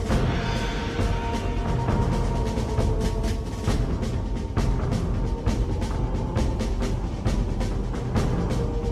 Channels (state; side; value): identical; both; correlation 1.00